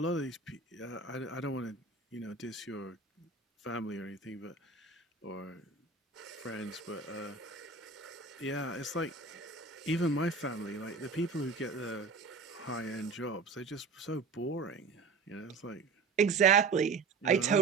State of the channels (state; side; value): quieter; left; 4.5 dB